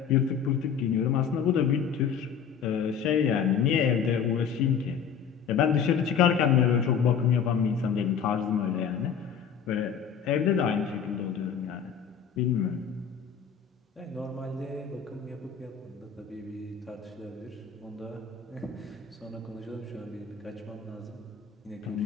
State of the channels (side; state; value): right; quieter; 7.2 dB